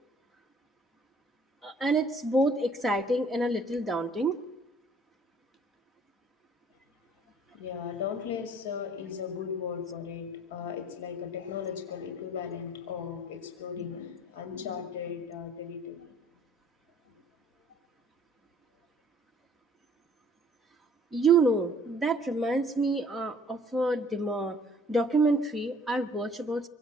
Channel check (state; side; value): normal; both; correlation 0.57